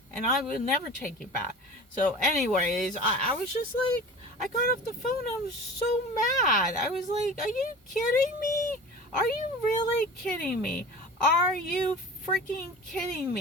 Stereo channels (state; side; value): normal; both; correlation 0.37